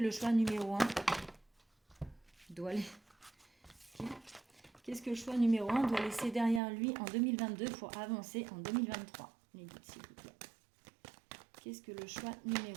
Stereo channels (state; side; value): drops out; left; at 6.6 s